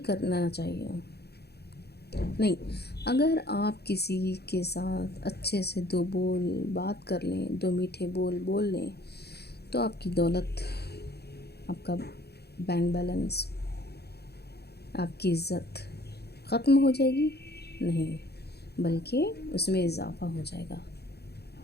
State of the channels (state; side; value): late; right; 0.47 ms